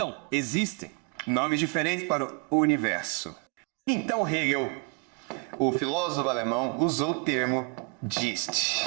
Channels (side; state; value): left; quieter; 30.9 dB